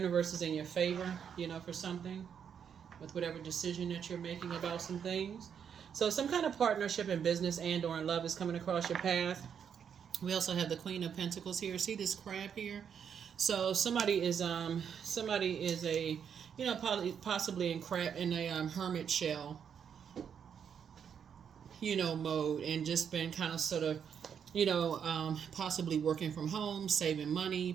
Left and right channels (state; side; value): quieter; left; 7.7 dB